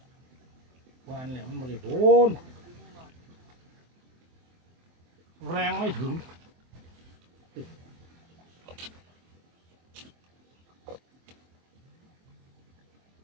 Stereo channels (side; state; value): left; late; 23 ms